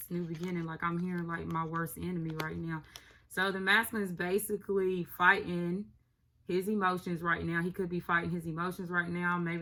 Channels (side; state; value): both; identical; correlation 1.00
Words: new beginning. Like, I'm hearing like my worst enemy right now. So the masculine is basically fighting his emotions right now. He could be fighting his emotions right now.